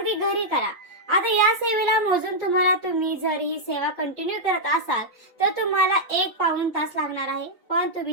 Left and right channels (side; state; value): both; normal; correlation -0.05